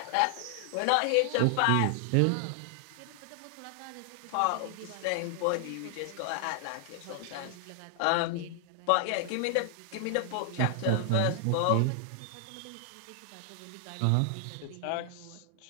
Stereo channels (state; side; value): different; both; correlation 0.00